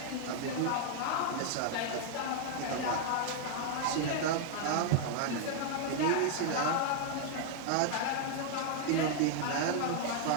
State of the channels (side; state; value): both; different; correlation 0.00